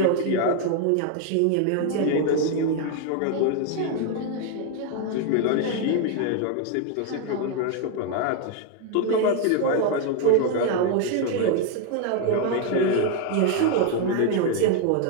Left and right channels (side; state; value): both; different; correlation 0.00